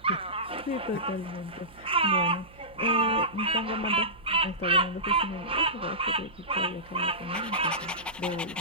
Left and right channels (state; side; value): noise; right; hum, 23 dB below the sound